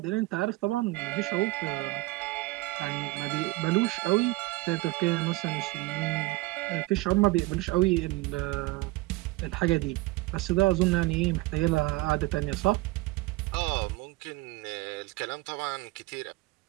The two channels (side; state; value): left; quieter; 21.3 dB